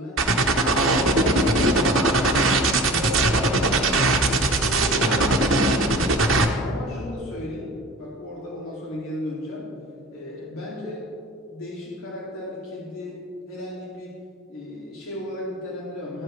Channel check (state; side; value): normal; both; correlation 0.39